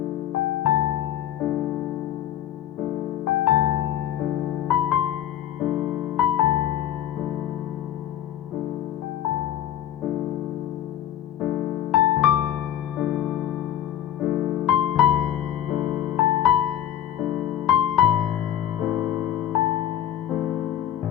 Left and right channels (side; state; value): right; quieter; 11.4 dB